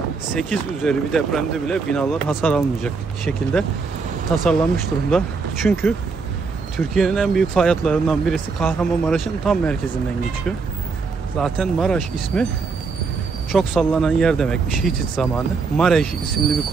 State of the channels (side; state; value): left; quieter; 4.7 dB